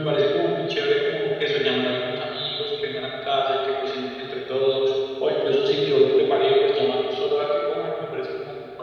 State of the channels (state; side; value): identical; both; correlation 1.00